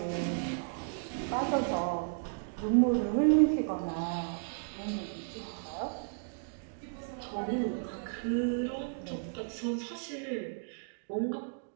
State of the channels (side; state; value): left; silent; digital silence